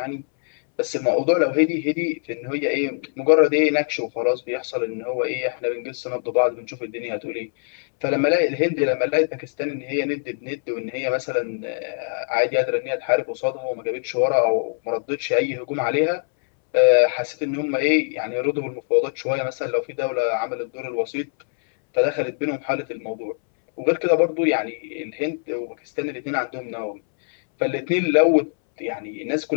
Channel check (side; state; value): right; silent; 63 dB below the other